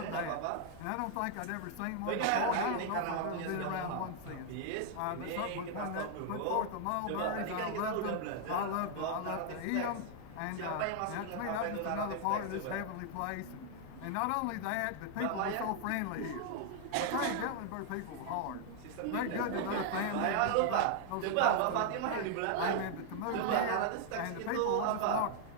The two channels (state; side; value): different; both; correlation 0.00